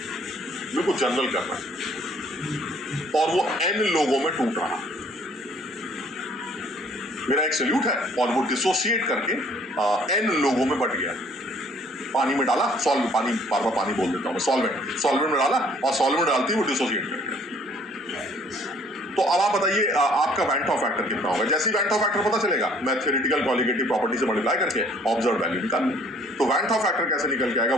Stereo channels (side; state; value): both; normal; correlation 0.58